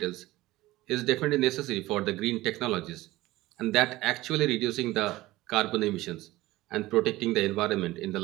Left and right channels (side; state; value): left; quieter; 17.9 dB